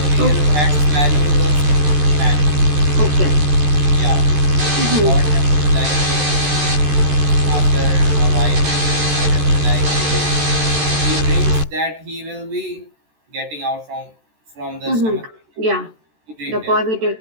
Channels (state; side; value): late; left; 13 ms